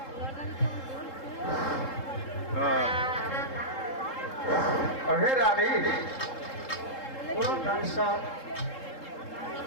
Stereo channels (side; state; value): right; late; 3.7 ms